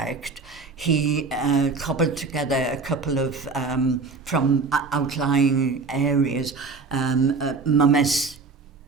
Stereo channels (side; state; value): left; quieter; 4.3 dB